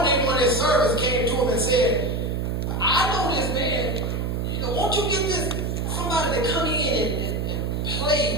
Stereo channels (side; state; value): right; noise; hum, 1 dB below the sound